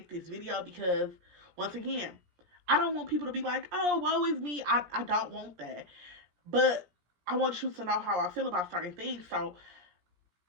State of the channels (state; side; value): late; left; 17 ms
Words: this video, because once again, I don't want people to be like, oh, woe is me. I don't want that. But I want you to know how I feel about certain things. So